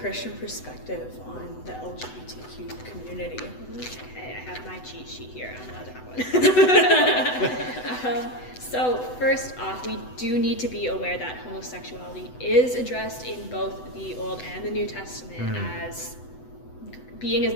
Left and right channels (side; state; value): right; late; 8.0 ms